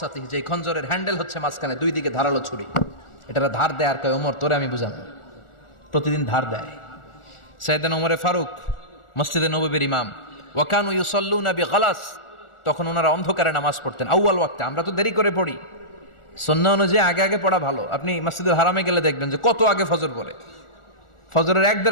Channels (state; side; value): late; right; 1.4 ms